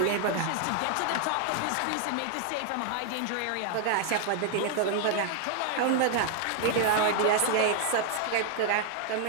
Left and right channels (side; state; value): both; different; correlation 0.00